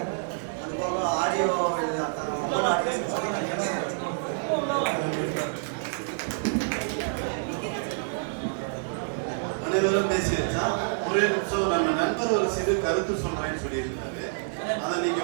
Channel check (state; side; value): silent; left; digital silence